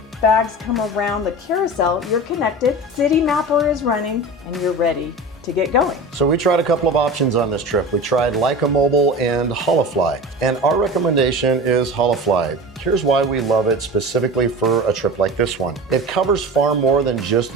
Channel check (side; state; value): both; normal; correlation 0.33